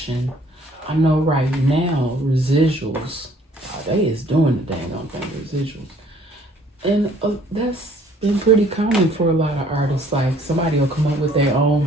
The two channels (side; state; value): both; normal; correlation 0.58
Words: I know right now, residuals, they is doing the dang on thing, residuals. And that's been pretty common for a lot of artists. Like, somebody will come up with their own